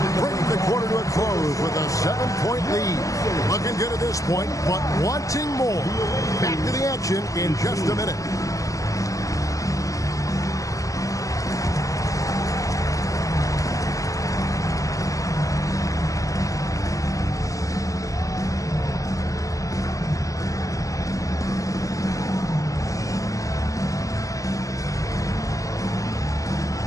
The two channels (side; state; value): right; late; 0.16 ms